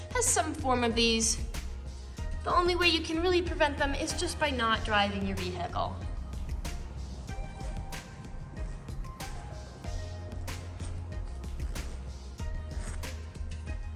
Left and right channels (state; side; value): identical; both; correlation 1.00